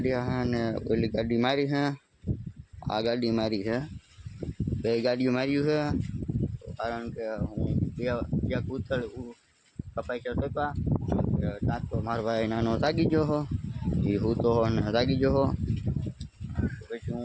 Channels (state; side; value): identical; both; correlation 1.00